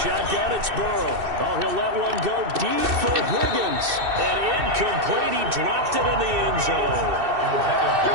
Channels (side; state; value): left; late; 2.6 ms